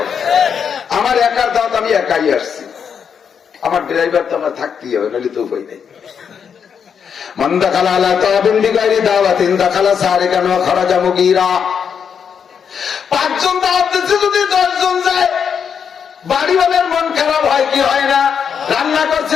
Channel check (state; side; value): quieter; right; 7.1 dB